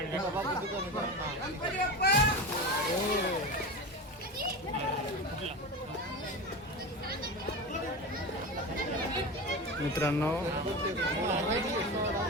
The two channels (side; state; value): both; normal; correlation 0.25